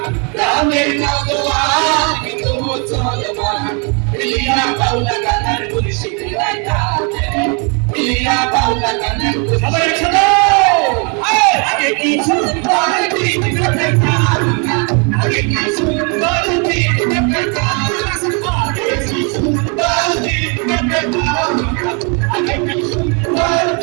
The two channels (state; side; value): quieter; left; 35.2 dB